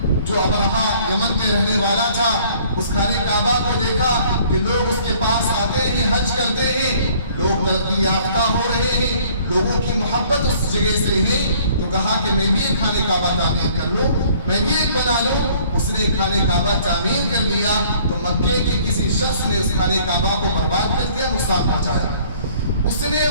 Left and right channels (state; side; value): inverted; both; correlation -0.57